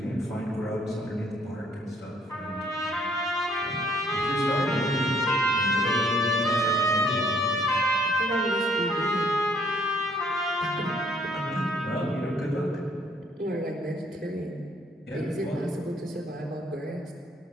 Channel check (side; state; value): both; normal; correlation 0.64